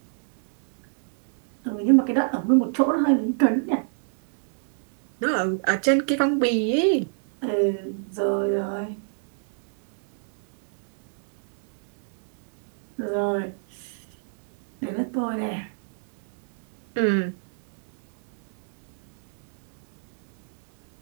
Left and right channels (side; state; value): left; silent; digital silence